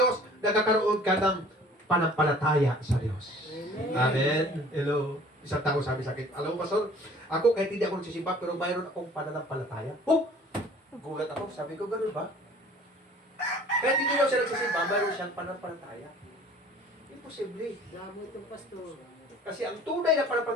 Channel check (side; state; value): both; normal; correlation 0.50